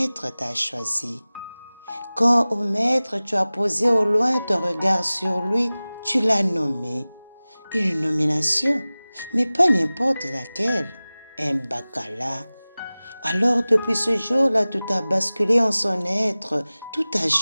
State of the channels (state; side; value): inverted; both; correlation -0.98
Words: t'a choisi. Quand au maître tu as posé au loin ton regard sur lui, tu l'as nommé. Une nomination, mais pas n'importe laquelle, un bacala. Alors depuis ce jour-là, tout a basculé en son être, tout a